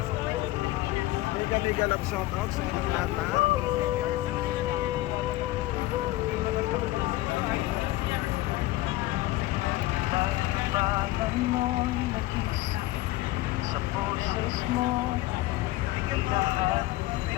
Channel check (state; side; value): quieter; right; 17.7 dB